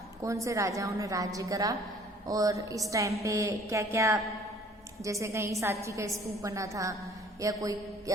कौन से राजाओं ने राज्य करा, और इस टाइम पे क्या क्या, जैसे कहीं सांची का स्तूप बना था, या कोई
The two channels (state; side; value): normal; both; correlation 0.54